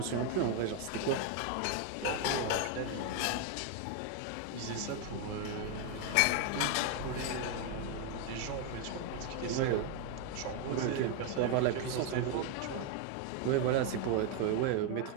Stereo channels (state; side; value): different; both; correlation 0.01